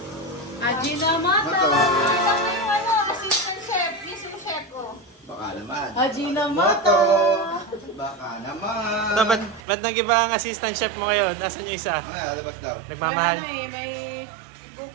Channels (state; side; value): drops out; left; at 9.6 s